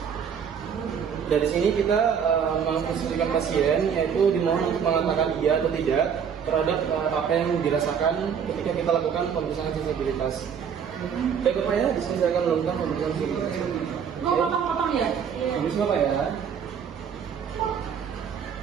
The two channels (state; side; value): quieter; left; 7.4 dB